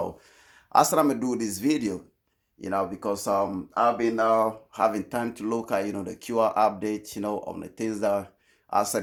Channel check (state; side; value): identical; both; correlation 1.00